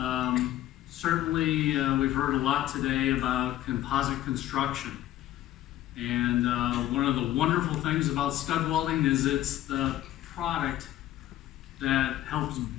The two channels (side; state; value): right; quieter; 13.7 dB